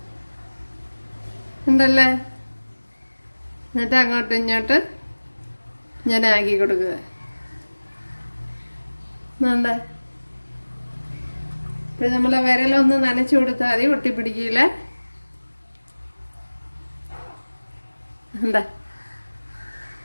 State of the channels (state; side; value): inverted; both; correlation -1.00